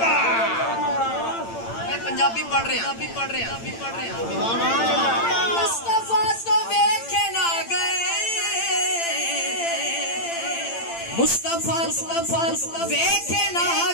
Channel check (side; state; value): right; late; 8.8 ms